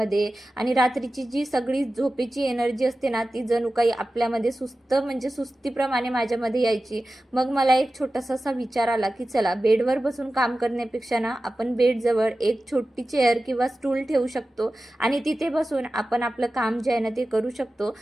आणि रात्रीची जी सगळी झोपेची एनर्जी असते ना ती जणू काही आपल्यामध्ये म्हणजे सुस्तीप्रमाणे माझ्यामध्ये यायची. मग मला एक छोटासा असा विचार आला की चला बेडवर बसून काम करण्यापेक्षा ना आपण बेडजवळ एक छोटी चेअर किंवा स्टूल ठेवू शकतो आणि तिथे बसून आपण आपलं काम जे आहे ना ते करू शकतो.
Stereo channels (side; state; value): both; normal; correlation 0.95